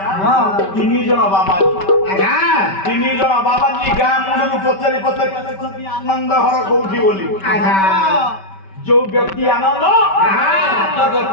3 ଜଣ ବାବାଜୀ ଗାଁ ମୁଣ୍ଡରୁ ପଚାରି ଆନନ୍ଦ ଘର କୋଉଠି ବୋଲି। ଯୋଉ ବ୍ୟକ୍ତି ଆନନ୍ଦ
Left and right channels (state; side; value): late; right; 5.2 ms